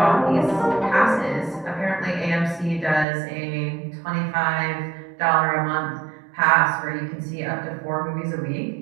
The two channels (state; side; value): drops out; left; at 3.1 s